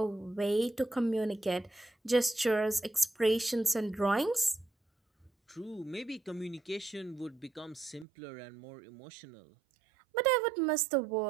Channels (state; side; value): drops out; left; at 8.1 s